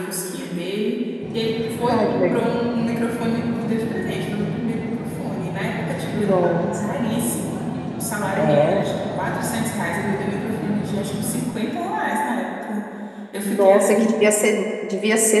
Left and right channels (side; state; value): both; identical; correlation 1.00